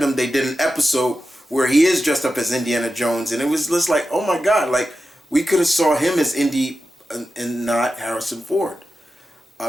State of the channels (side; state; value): both; normal; correlation 0.91